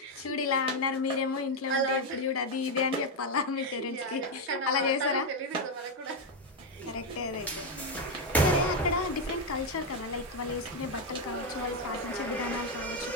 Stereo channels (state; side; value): normal; both; correlation 0.05